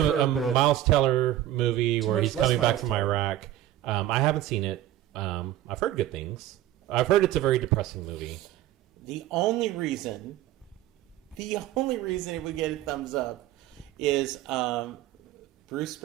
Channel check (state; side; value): quieter; left; 13.5 dB